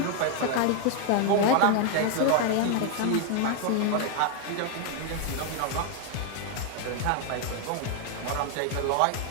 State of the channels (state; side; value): different; both; correlation 0.00